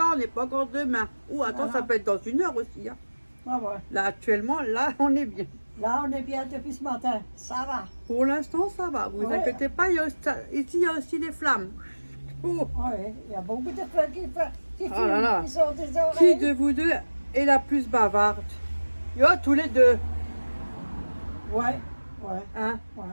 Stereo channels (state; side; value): inverted; both; correlation -1.00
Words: on n'est pas encore demain. Ou attends, Voilà. ça peut être dans 1 heure aussi. Hein. Ah ouais. Là, actuellement, là, on est bien. Là, on est bien depuis ce matin. Ça va. Pour l'instant, ça va. Vous Ouais. inquiétez pas. Ici, il y a aussi des flammes. Oh. Oui, il y a beaucoup de feux qui Oh là là. qui sont des Qui oreilles. de vous deux est la plus bavarde? Yo, tous les deux. Ouais, ouais, Hein? ouais.